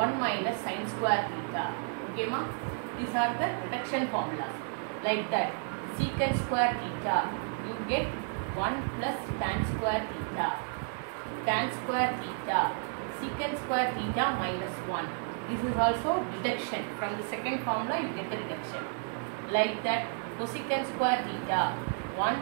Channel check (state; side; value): silent; left; 57 dB below the other